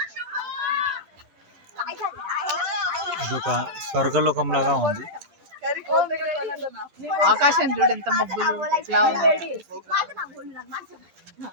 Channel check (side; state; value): left; late; 10 ms